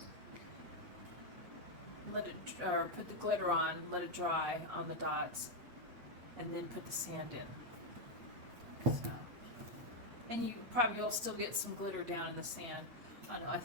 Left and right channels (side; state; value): left; late; 8.6 ms